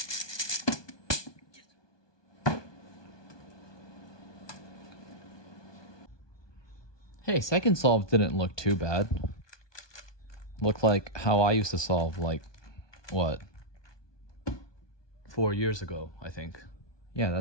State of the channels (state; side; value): late; right; 1.2 ms